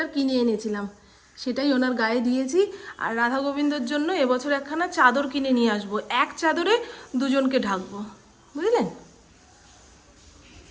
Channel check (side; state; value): both; identical; correlation 1.00